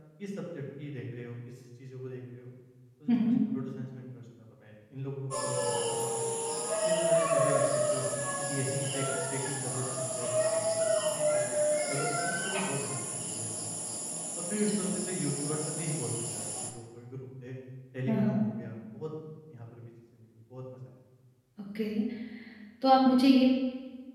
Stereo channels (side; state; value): both; identical; correlation 1.00